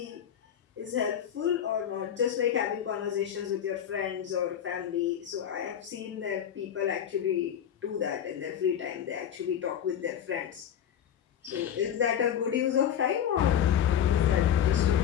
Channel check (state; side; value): quieter; right; 9.3 dB